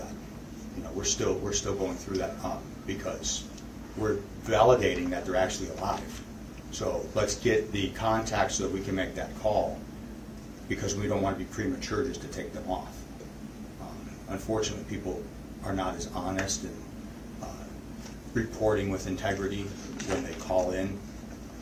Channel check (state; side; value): identical; both; correlation 1.00